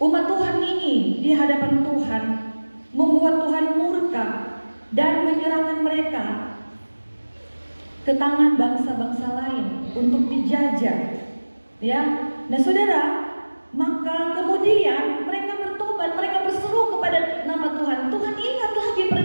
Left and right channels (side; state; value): both; inverted; correlation -1.00